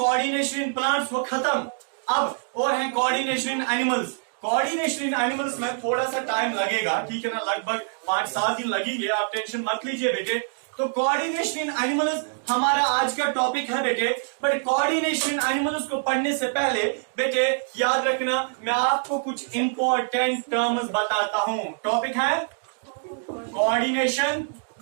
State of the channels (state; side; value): silent; left; digital silence